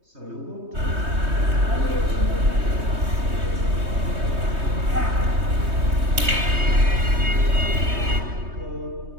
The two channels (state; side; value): late; left; 3.2 ms